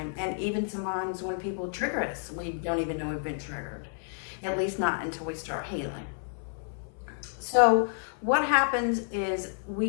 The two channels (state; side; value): silent; right; 56 dB below the other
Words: and even sometimes when people trigger us, we don't even know we've been triggered, at least not until we start healing. So what happens is